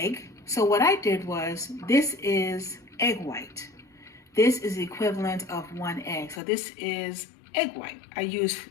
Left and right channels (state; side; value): drops out; right; at 6.4 s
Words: So what I did was, this is egg white. This is the equivalent of 1 egg. So this is egg white. I used